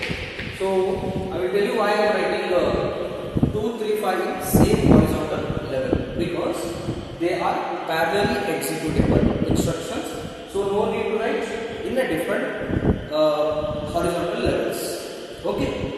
So I will tell you why I am writing 2, 3, 5 in same horizontal level, because they are parallelly executable instructions. So no need to write in a different horizontal levels. Okay.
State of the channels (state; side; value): identical; both; correlation 1.00